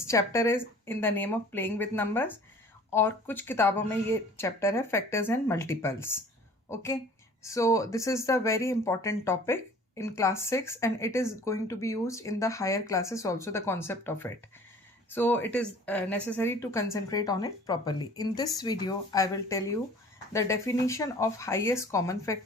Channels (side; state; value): both; normal; correlation 0.48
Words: chapter is in the name of playing with numbers और कुछ किताबों में ये chapter है factors and multiples. Okay, so this is the very important topic in class 6 and it is going to be used in the higher classes also, the concept of it. So it is necessary to concentrate on it properly. In this video I will tell you the definition of highest common